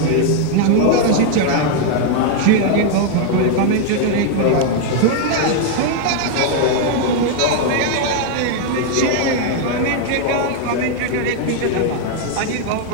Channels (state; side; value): different; both; correlation 0.00